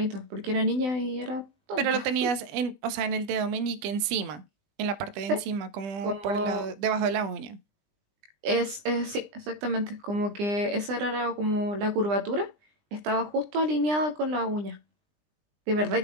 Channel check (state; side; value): late; left; 20 ms